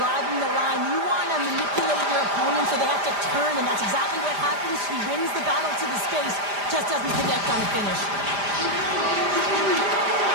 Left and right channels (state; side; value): late; left; 5.0 ms